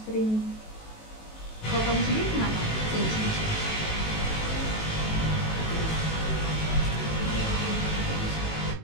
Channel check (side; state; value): right; late; 18 ms